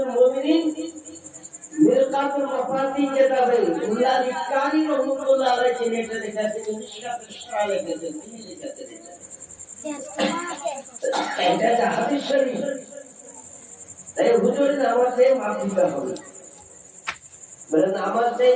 মুমিনিন মিরকাতুল মাফাতি কিতাবে উল্লাহ ইকানি রাহমাতুল্লাহ আলাইহি নেটে লেখাছে, মিশকাতুল ইসরা লেখাছে, তিনি লেখাছে এটা হাদিস শরীফ। তাই হুজুর নামাজে মাফ দিতে হবে, বলে নামাজে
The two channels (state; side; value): identical; both; correlation 1.00